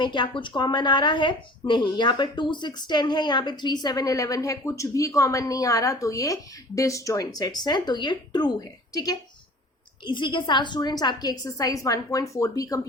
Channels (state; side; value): normal; both; correlation 0.45